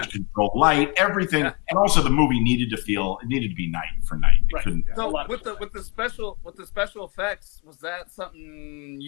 control light, everything, and also the movie needed to be night for night. It couldn't. So with the special effects, was that something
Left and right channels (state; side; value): quieter; right; 32.4 dB